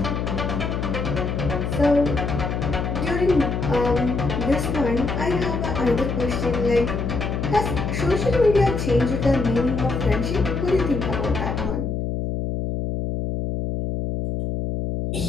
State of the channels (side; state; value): left; noise; hum, 2 dB below the sound